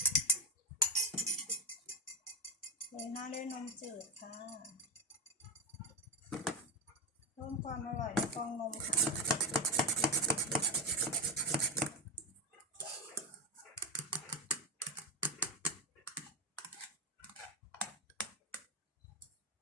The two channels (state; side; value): normal; both; correlation 0.13